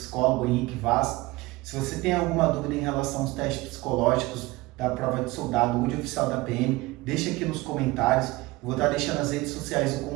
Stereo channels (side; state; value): left; quieter; 21.0 dB